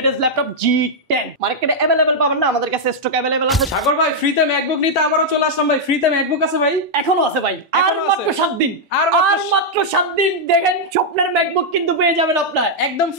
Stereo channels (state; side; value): normal; both; correlation -0.04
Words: ল্যাপটপ G10 মার্কেটে अवेलेबल পাবেন না আমাদের কাছে স্টক अवेलेबल আছে সাগর ভাই ফ্রিতে ম্যাকবুক নিতে আবারও চলে আসলাম ভাই ফ্রিতে ম্যাকবুক আছে ভাই এখনো আছে ভাই আর মাত্র 7 দিন আর মাত্র 7 দিন দেখেন স্বপ্নের ম্যাকবুক কিন্তু পেয়ে যাবেন আপনারা একদম